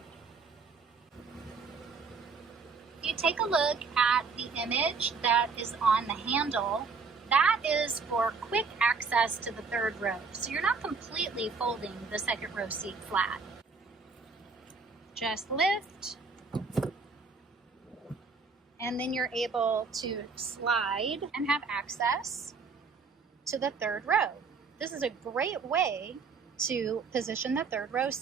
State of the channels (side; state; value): left; quieter; 4.8 dB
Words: If you take a look at the image that is on the handle, that is for quick access to the third row. So you're not completely folding the second row seat flat. Just lift, and then you're able to slide and have access to the third row. This is a great way to position the third row